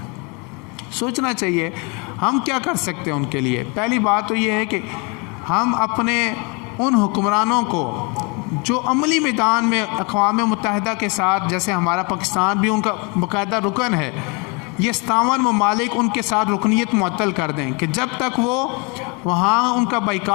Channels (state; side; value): quieter; right; 31.4 dB